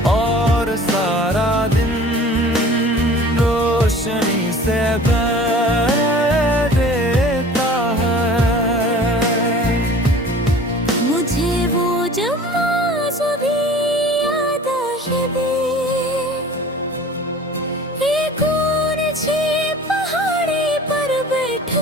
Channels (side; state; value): both; normal; correlation 0.44